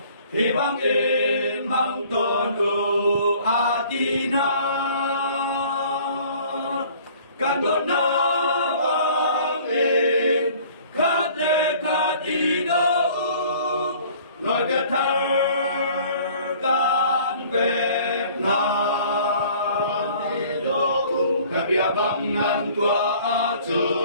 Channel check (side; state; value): both; inverted; correlation -0.52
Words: thì băng in mang tuần u atina can đốt na vang in khát lệ khát đi đâu nói biết thơ gan Việt Nam cả bia băng ngăn tua